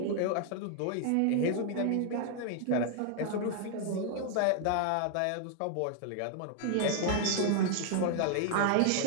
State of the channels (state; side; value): different; both; correlation 0.00